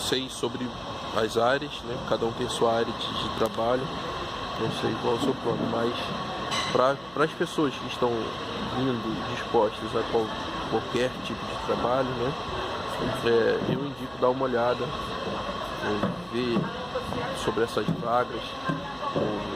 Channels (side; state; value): right; noise; hum, 24 dB below the sound